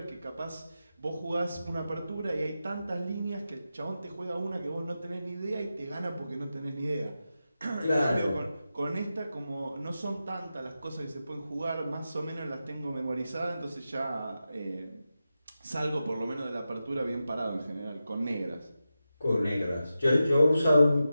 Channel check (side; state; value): both; inverted; correlation -0.91